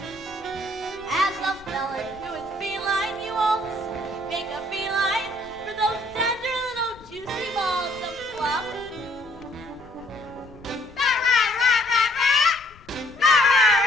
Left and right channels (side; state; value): left; noise; rumble, 23 dB below the sound